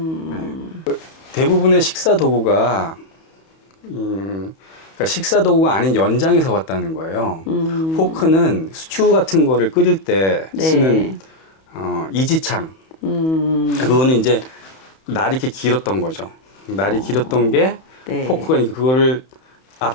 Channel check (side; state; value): right; late; 31 ms